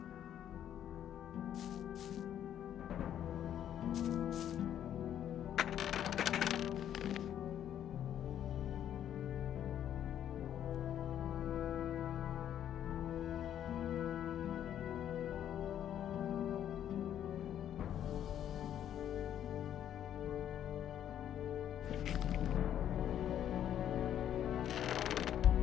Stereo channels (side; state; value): right; quieter; 10.4 dB